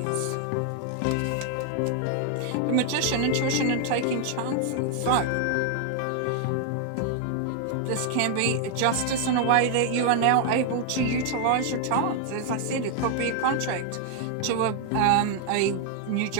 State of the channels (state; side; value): different; both; correlation 0.00